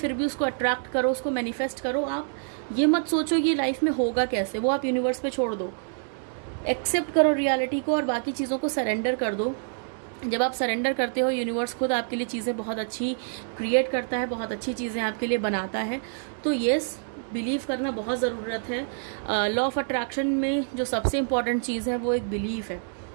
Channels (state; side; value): silent; left; digital silence